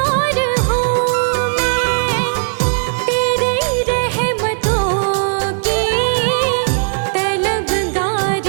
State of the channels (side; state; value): left; silent; 68 dB below the other